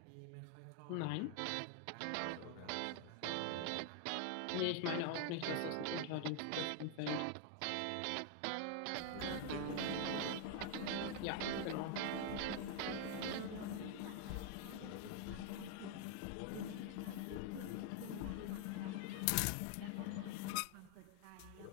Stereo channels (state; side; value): different; both; correlation 0.00